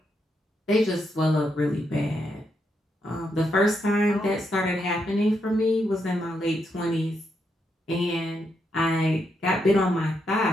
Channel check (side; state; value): both; normal; correlation 0.80